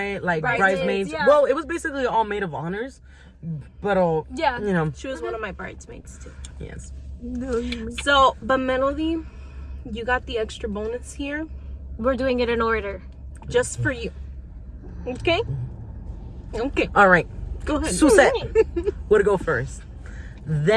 like bridesmaids. Yeah. Well, it was basically all maid of honors, but Yeah. you know, She was one of my bridesmaids too. yes. So, but Melody, you got the extra bonus here We're doing it in order. just for you. Okay? Okay. All right, Go ahead. Susette would go first.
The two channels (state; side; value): identical; both; correlation 1.00